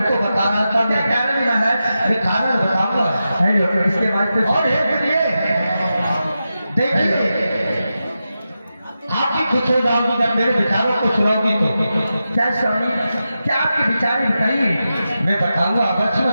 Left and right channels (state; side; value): inverted; both; correlation -0.90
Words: बता रहा था मैं, कारण नहीं महाराज, अरे कारण बताऊंगा। हेलो इसके बाद कुछ और एक लिए देखिए आप भी खुश हो जाओगी जब मेरे विचारों को सुनाओगी तो। क्या स्वामी, क्या आपके विचार हैं बताइए। मैं बताऊंगा, अवश्य